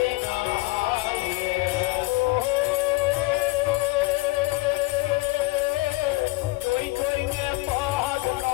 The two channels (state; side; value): quieter; right; 21.5 dB